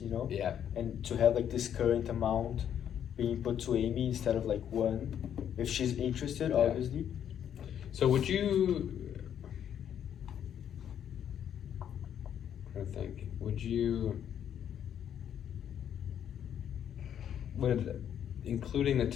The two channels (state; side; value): quieter; right; 9.4 dB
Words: you know? Yeah. And to have like this current amount being put to Amy instead of like one, if she's interested, Yeah. obviously. So would you? I think. Would including the